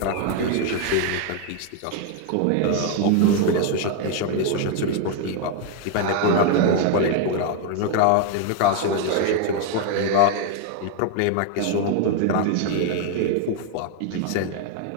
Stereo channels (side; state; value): both; different; correlation 0.00